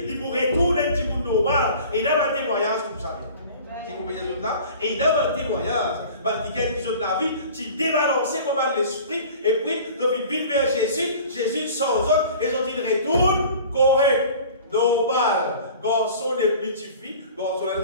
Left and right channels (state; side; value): inverted; both; correlation -0.43